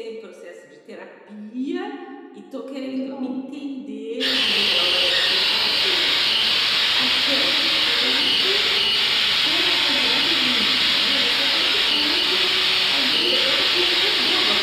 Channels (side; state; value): both; identical; correlation 1.00